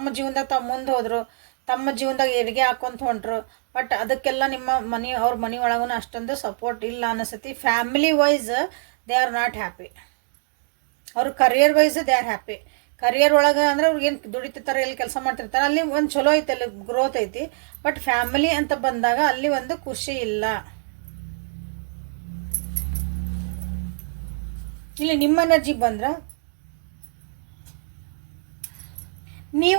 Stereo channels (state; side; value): silent; left; digital silence